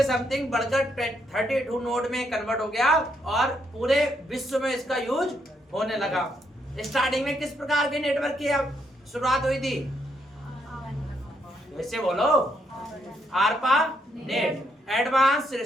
समथिंग बढ़कर 32 नोड में कन्वर्ट हो गया और पूरे विश्व में इसका यूज होने लगा। स्टार्टिंग में किस प्रकार के नेटवर्क की शुरुआत हुई थी? वैसे बोलो, आरपा net, advance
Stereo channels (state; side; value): normal; both; correlation 0.76